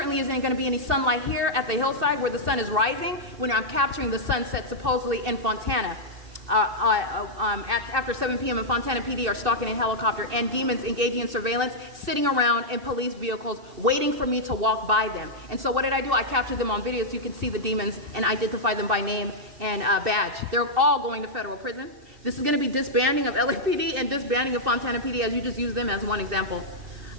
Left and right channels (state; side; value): late; left; 2.6 ms